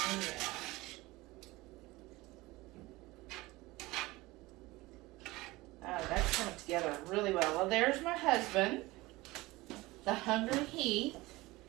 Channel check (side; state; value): left; quieter; 20.6 dB